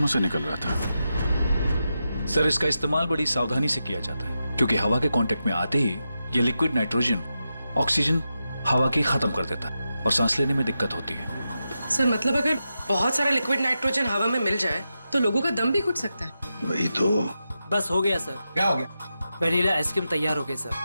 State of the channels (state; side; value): inverted; both; correlation -0.89